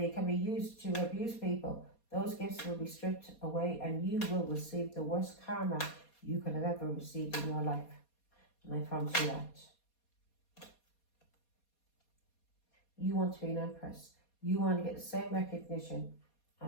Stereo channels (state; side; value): late; right; 4.2 ms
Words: can be used to abuse people, those gifts will be stripped away, and you will receive the worst karma you could have ever received in your life. And I promise you that. You want to be an empress. You want to get the same recognition